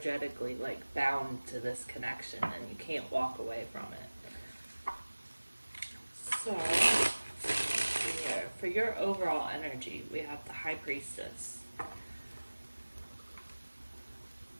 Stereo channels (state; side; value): inverted; both; correlation -1.00